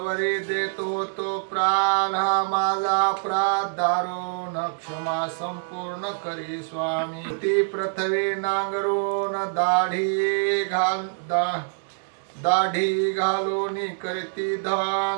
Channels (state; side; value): silent; left; digital silence